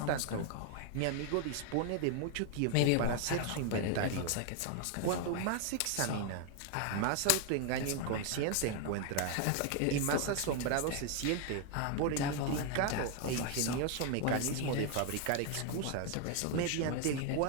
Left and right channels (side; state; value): both; different; correlation 0.00